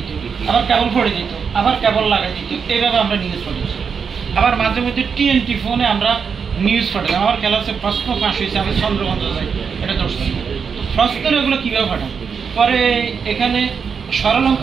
আবার কেবল পড়ে দিত, আবার কেবল লাগাই দিত, এইভাবে আমরা নিউজ পড়েছি। আবার মাঝে মধ্যে টিএনটি ফোনে আমরা নিউজ পাঠাতাম। আমার ক্লাসে প্রশ্ন ফাঁস হয়েছে, আমি চন্দ্রগঞ্জ যাই, এটা ধরছি। তো প্রশ্নের এগুলো কীভাবে পাঠান, পরে এখানে সরল অঙ্ক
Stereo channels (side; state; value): left; quieter; 6.2 dB